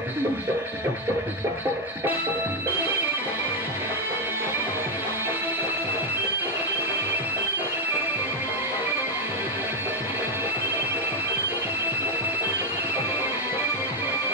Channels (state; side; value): normal; both; correlation 0.04